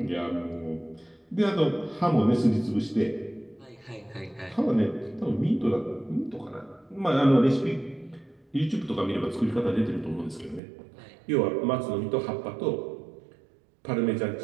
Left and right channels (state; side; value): drops out; left; at 10.6 s